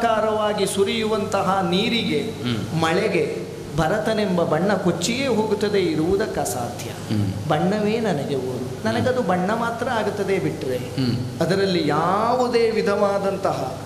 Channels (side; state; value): both; identical; correlation 1.00